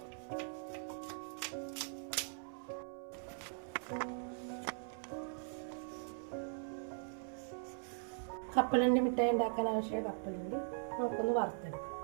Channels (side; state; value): left; silent; 51 dB below the other